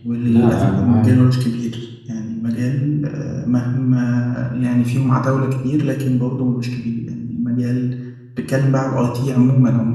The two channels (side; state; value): both; identical; correlation 1.00